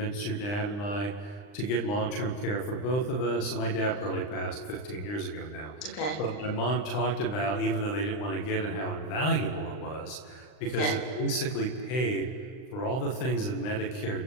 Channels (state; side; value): late; right; 39 ms